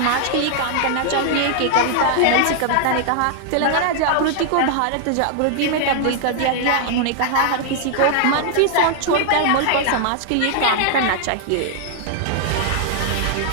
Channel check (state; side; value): different; both; correlation 0.00